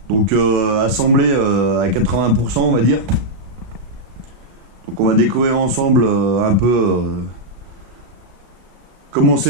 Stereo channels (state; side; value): late; left; 36 ms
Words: donc assemblé à 80% on va dire. Donc on va découvrir ensemble un peu comment